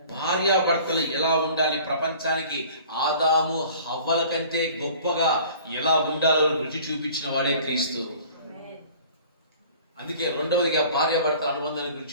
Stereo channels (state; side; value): inverted; both; correlation -0.48